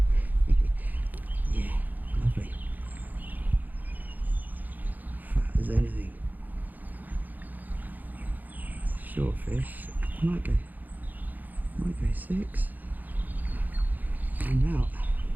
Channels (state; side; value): late; left; 0.083 ms